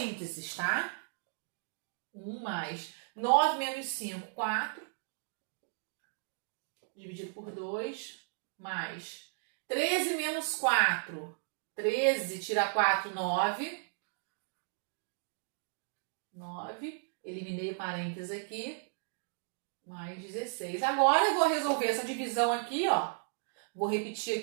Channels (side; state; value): left; silent; digital silence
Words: tá? 1 mais 9 menos 5, 4. Dividido por 2, mais 13 menos 4. 13 tira 4, 9. 9. Eliminei o parênteses aqui. Mais 16. Agora eu vou resolver essa divisão aqui, ó. Vou repetir